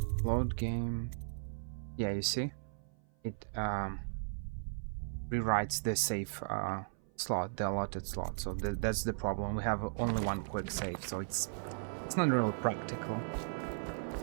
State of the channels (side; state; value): left; silent; 53 dB below the other